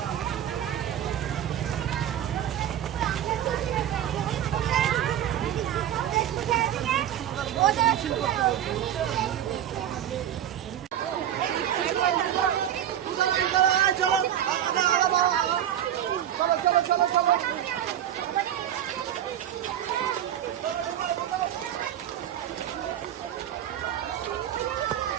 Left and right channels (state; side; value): quieter; left; 10.9 dB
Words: হবে। মিছিল করতে বলছে। চলো